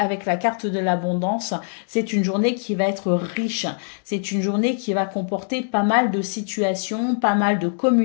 la carte de l'abondance. C'est une journée qui va être riche, c'est une journée qui va comporter pas mal de situations, pas mal de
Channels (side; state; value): right; silent; digital silence